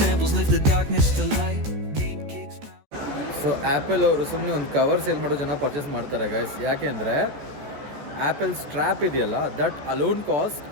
lift the darkness to light. Deep kicks. So apple ಅವರು ಸುಮ್ಮನೆ ಒಂದು cover sale ಮಾಡೋ ಜನ purchase ಮಾಡ್ತಾರೆ guys. ಯಾಕೆ ಅಂದರೆ Apple strap ಇದೆಯಲ್ಲ, that alone cost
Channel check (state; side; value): late; left; 14 ms